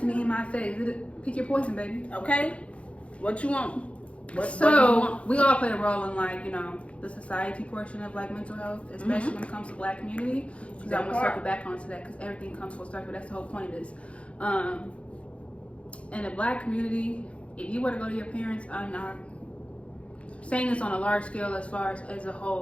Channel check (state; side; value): late; right; 0.062 ms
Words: me in my face. Pick your poison, baby. Okay. What you want? We all play a role in the society portion of mental health, especially when it comes to Black community. Because I want to circle back onto that because everything comes full circle. That's the whole point of this. In the Black community, if you were to go to your parents, I'm not saying this on a large scale as far as a